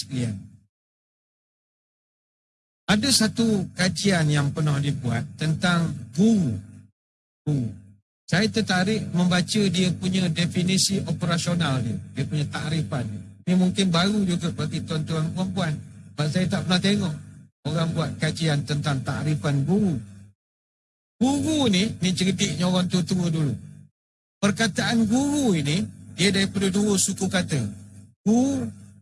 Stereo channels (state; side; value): identical; both; correlation 1.00